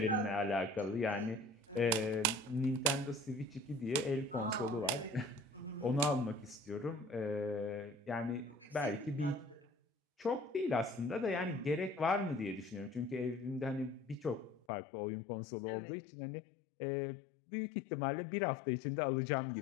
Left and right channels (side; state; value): right; drops out; at 14.7 s